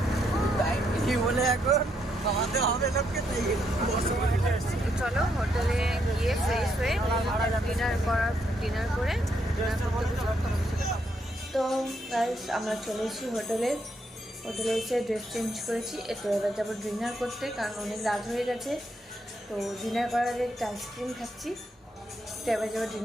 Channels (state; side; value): normal; both; correlation 0.76